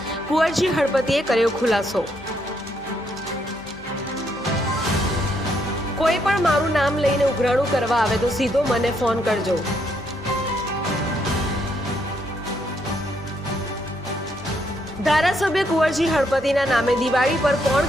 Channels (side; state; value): left; noise; hum, 22 dB below the sound